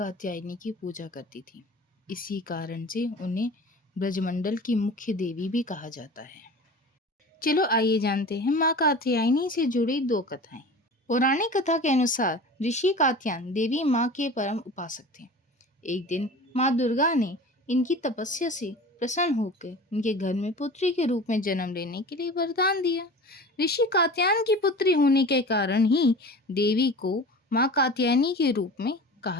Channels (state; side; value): normal; both; correlation 0.37